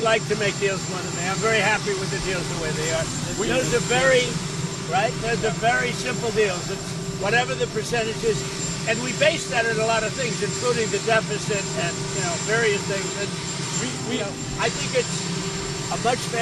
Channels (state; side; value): identical; both; correlation 1.00